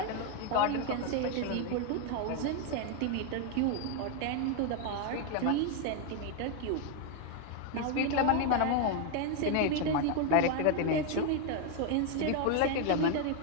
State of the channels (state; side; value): different; both; correlation 0.01